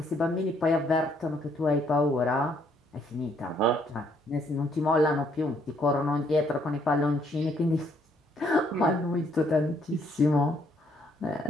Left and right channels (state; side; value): normal; both; correlation 0.68